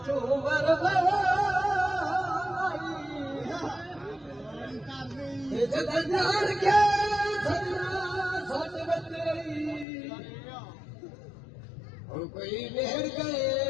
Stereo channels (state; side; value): drops out; right; at 9.9 s